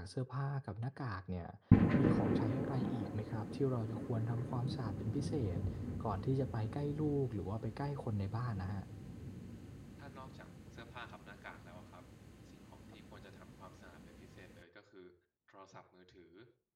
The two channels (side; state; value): both; identical; correlation 1.00